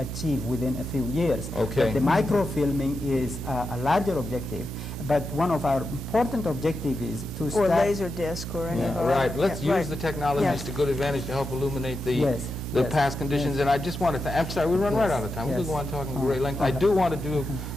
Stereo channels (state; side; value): normal; both; correlation 0.88